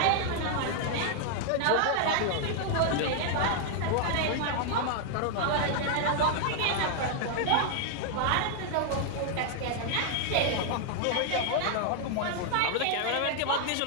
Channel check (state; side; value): different; both; correlation 0.00